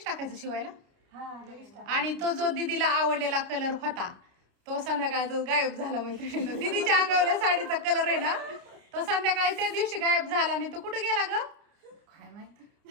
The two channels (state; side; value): late; left; 29 ms